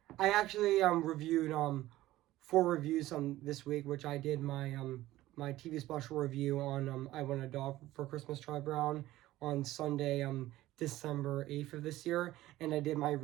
actually reviewed four reviews this week, which I did my TV special review on I Want a Dog for Christmas, Charlie Brown, on Sunday December 8th of this year, and I did my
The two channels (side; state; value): left; quieter; 15.9 dB